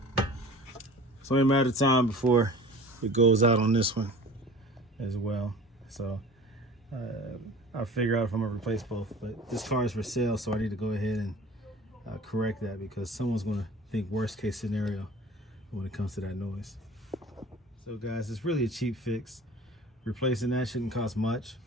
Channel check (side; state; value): both; normal; correlation 0.42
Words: It's only a matter of time before it goes out on this one as well. So I'll figure out if I'm gonna replace both. But this car is for sale, so I need to go ahead and correct that, because someone's gonna think worst case scenario when it comes to that noise. So guys, it's really a cheap fix. Replacing that shouldn't cost much.